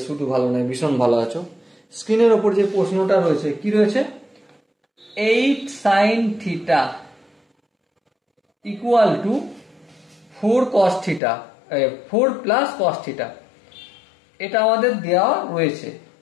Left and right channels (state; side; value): drops out; right; at 11.2 s